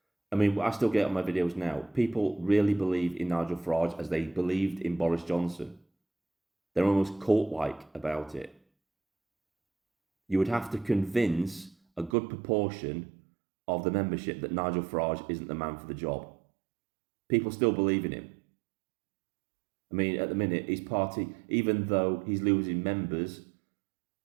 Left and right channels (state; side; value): drops out; left; at 12.2 s